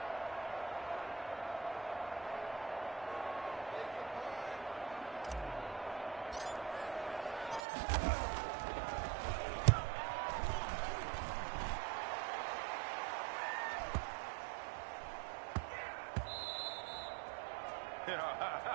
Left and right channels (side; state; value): left; drops out; at 7.6 s